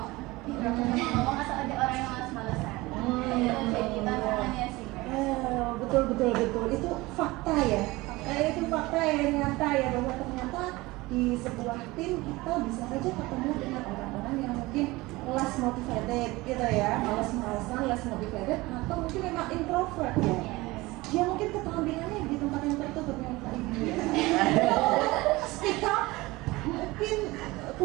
atau ada orang yang malas-malesan. Jadi tantangannya sih. Betul itu fakta ya. Itu fakta yang nyata ya, bahwa ternyata di sebuah tim kita bisa saja ketemu dengan orang-orang yang mungkin less motivated gitu ya, malas-malasan, less motivated, atau mungkin memang introvert ya. Dia mungkin keterampilannya di tempat yang tertutup yang kayak gini ya. Speak up mungkin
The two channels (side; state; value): left; quieter; 21.0 dB